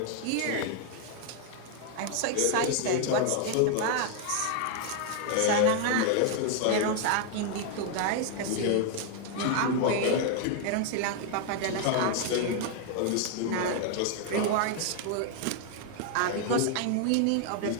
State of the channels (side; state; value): both; different; correlation 0.00